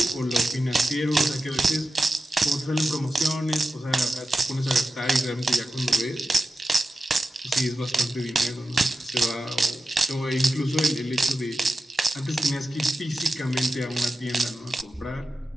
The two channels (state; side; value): normal; both; correlation 0.92